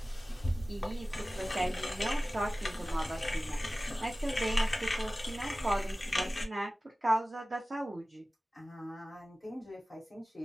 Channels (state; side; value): normal; both; correlation 0.97